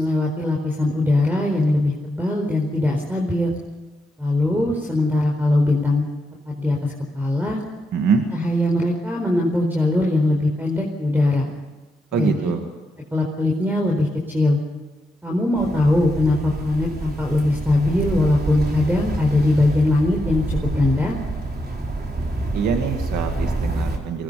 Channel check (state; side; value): normal; both; correlation 0.83